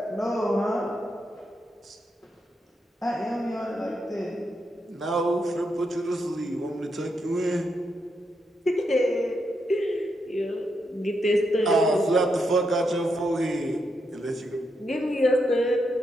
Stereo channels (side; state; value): both; normal; correlation 0.82